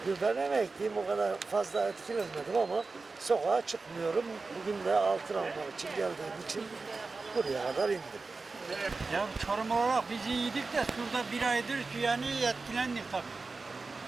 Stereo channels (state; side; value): quieter; left; 4.0 dB